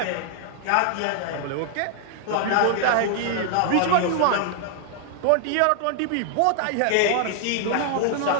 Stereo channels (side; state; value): both; different; correlation 0.00